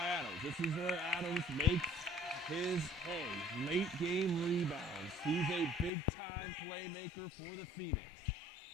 Adams. This is where Adams makes his hay. Late game rebounds. He's a big-time playmaker for the Phoenix.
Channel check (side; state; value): right; drops out; at 5.9 s